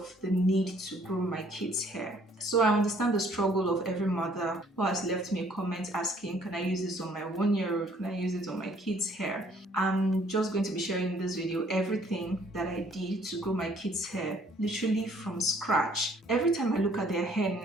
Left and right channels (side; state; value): both; normal; correlation 0.61